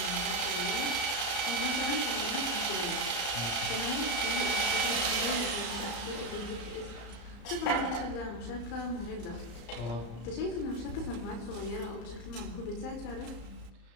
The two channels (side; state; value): right; late; 34 ms